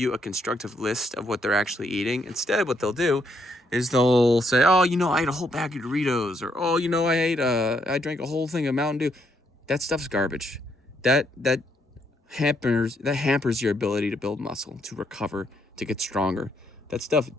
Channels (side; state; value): both; normal; correlation 0.74